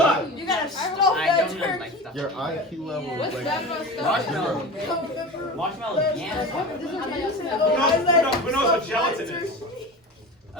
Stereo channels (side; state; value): both; normal; correlation 0.31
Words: You gotta stuff I that don't know my turkey. stuff. Your IQ level is What's like... bad about stuffing? Marshmallow. Marshmallow jam. Who knows what gelatin is?